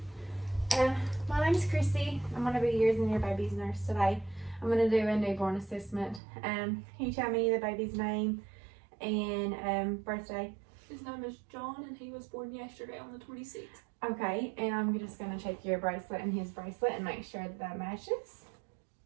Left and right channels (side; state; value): left; drops out; at 6.2 s